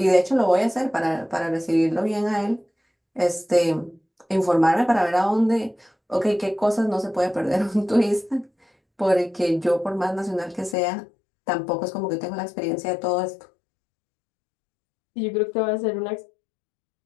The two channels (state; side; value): drops out; right; at 10.8 s